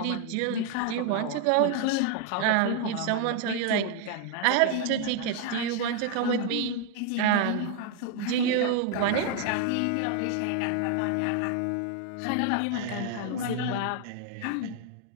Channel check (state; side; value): different; both; correlation 0.00